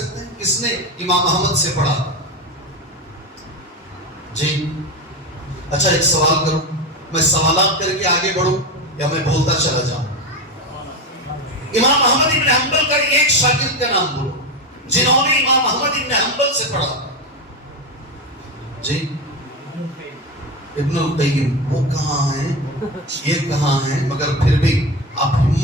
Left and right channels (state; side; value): normal; both; correlation 0.18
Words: ہیں کس نے امام احمد سے پڑھا؟ جی اچھا، ایک سوال کروں، میں سوالات کر کے آگے بڑھوں یا میں بولتا چلا جاؤں؟ امام احمد ابن حنبل کا ایک شاگرد کا نام بولو جنہوں نے امام احمد ابن حنبل سے پڑھا۔ جی ابن القیم، وہ کہاں ہیں، یہ کہاں ہیں، مگر پھر بھی آپ